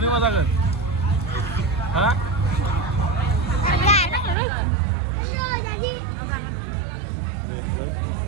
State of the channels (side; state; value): left; drops out; at 4.4 s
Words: मा जागोन हा